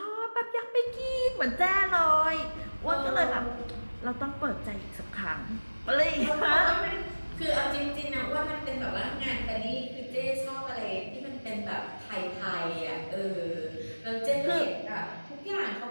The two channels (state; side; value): inverted; both; correlation -1.00